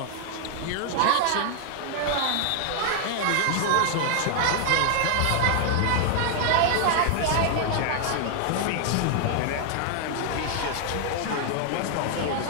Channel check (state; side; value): different; both; correlation 0.00